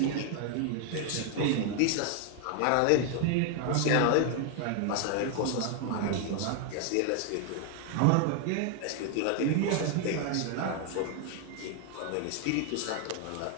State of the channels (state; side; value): different; both; correlation 0.00